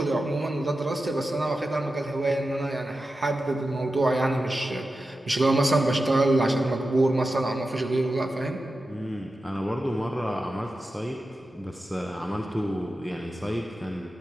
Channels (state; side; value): normal; both; correlation 0.92